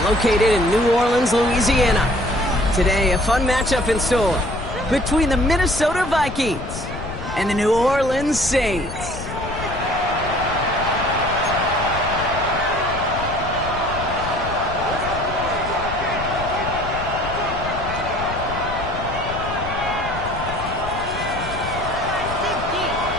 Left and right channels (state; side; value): noise; left; rumble, 9 dB below the sound